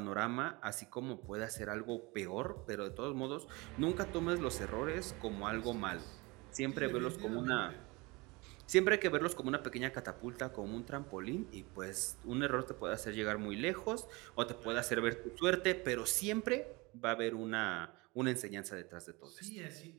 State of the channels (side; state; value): left; quieter; 25.0 dB